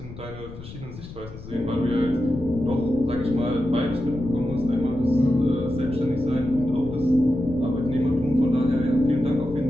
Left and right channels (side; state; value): left; noise; rumble, 14 dB below the sound